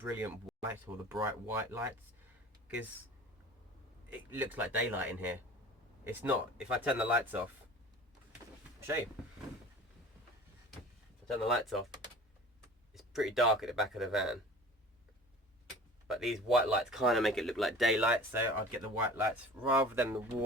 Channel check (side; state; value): both; normal; correlation 0.42